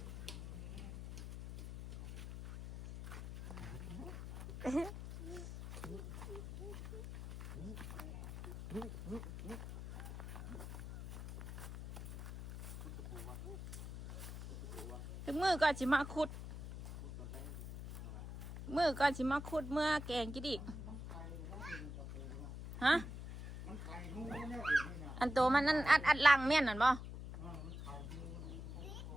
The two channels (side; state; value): left; noise; hum, 9 dB below the sound